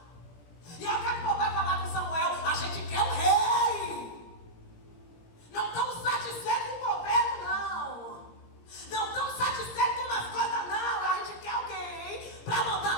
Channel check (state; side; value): late; right; 17 ms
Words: E aí o que é que o povo vai falar com Samuel? A gente quer um rei. Não estamos satisfeitos com o governo, não. Não estamos satisfeitos com as coisas, não. A gente quer alguém para